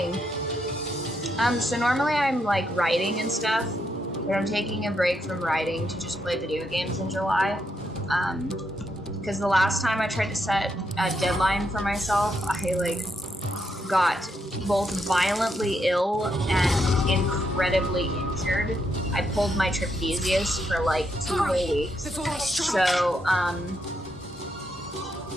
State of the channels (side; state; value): both; normal; correlation 0.79